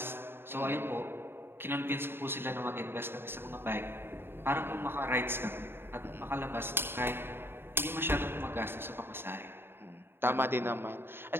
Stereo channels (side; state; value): left; late; 0.11 ms